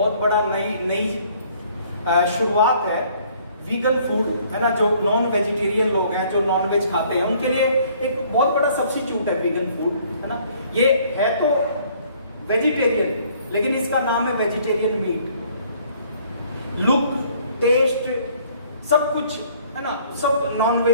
बड़ा नई शुरुआत है। वीगन फूड, है ना, जो नॉन वेजिटेरियन लोग हैं, जो नॉन वेज खाते हैं, उनके लिए एक बहुत बड़ा सब्स्टिट्यूट है वीगन फूड, है ना। ये है तो वेजिटेरियन लेकिन इसका नाम है वेजिटेरियन मीट। लुक, टेस्ट, सब कुछ, है ना, सब नॉन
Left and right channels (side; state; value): both; inverted; correlation -0.59